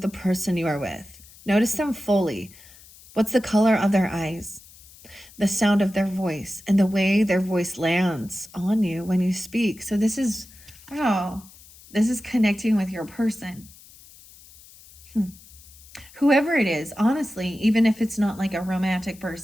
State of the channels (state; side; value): noise; left; hiss, 22 dB below the sound